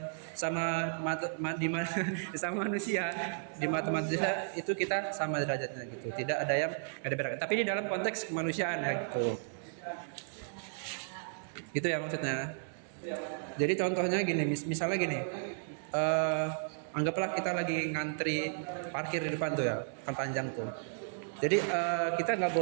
sama sama manusia di mata manusia itu kita sama derajatnya gitu. Tidak ada yang beda-beda. Tapi di dalam konteks kemanusiaan ya gitu. Itu ya maksudnya. Jadi contohnya gini, misalnya gini, anggaplah kita lagi ngantri parkir di depan tuh ya, kan panjang tuh. Jadi kita nggak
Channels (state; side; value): silent; left; digital silence